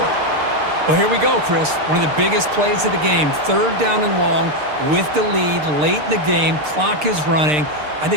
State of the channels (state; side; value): late; left; 6.7 ms